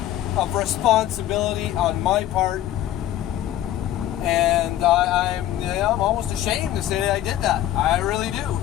of responsibility on my part, and I'm almost ashamed to say that I did that. I really do.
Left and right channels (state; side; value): quieter; right; 12.9 dB